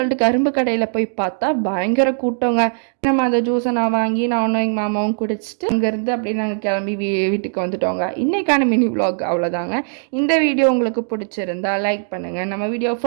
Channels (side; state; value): left; silent; digital silence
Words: கரும்பு கடையில் போய் பார்த்தா பயங்கர கூட்டங்க. நம்ம அந்த ஜூஸை நான் வாங்கி நானும் எங்கள் மாமாவும் குடிச்சிட்டு அங்கேருந்து அப்படியே நாங்கள் கிளம்பி வீட்டுக்கு வந்துட்டோங்க. இன்றைக்கான மினி விலாக் அவ்வளோதாங்க. இந்த வீடியோ உங்களுக்கு பிடிச்சிருந்தா லைக் பண்ணுங்கள். நம்ம வீடியோ